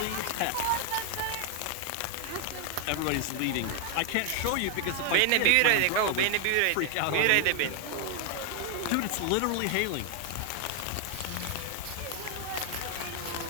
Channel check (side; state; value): both; different; correlation 0.00